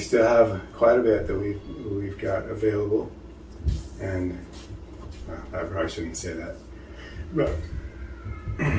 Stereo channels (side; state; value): both; identical; correlation 1.00